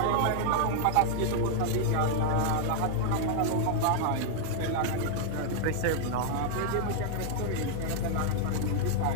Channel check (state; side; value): different; both; correlation 0.00